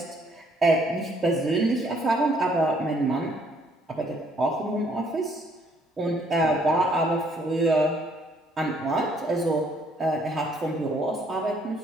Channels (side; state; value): both; normal; correlation 0.66